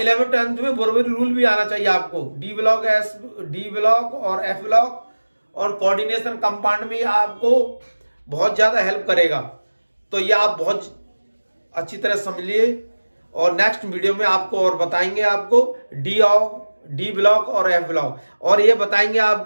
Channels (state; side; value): inverted; both; correlation -1.00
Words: 10th में बोरबरी रूल भी आना चाहिए आपको। डी ब्लॉक और एफ ब्लॉक और कोऑर्डिनेशन कंपाउंड में आपको बहुत ज़्यादा हेल्प करेगा। तो ये आप बहुत अच्छी तरह समझ लिए और नेक्स्ट वीडियो में आपको और बताएंगे आपको डी ब्लॉक और एफ ब्लॉक, और ये बताएंगे